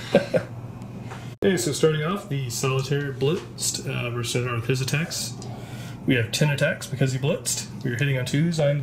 Okay, so starting off, the solitaire blitzed. We're starting with his attacks. We have 10 attacks because he blitzed. We are hitting on 2s. I'm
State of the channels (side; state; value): both; identical; correlation 1.00